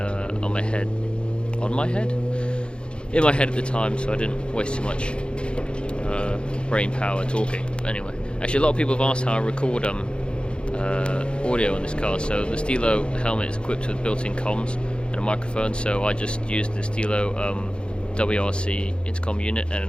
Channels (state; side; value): late; right; 0.055 ms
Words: my head at the time, so I didn't waste too much brain power talking. But anyway, actually a lot of people have asked how I record audio on this car. So the Stilo helmet is equipped with built-in comms and a microphone, so I just used the Stilo WRC intercom unit and an